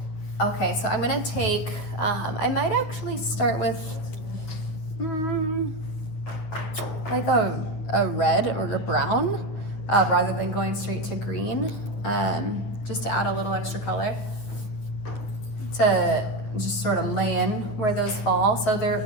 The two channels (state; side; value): late; right; 9.5 ms